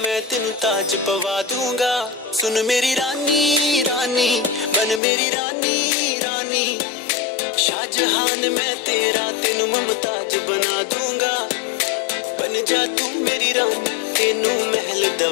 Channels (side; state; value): right; drops out; at 5.0 s